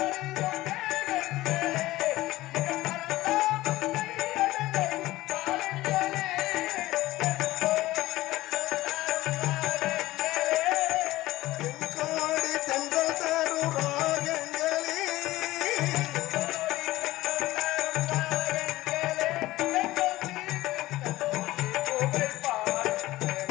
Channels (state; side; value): quieter; right; 17.4 dB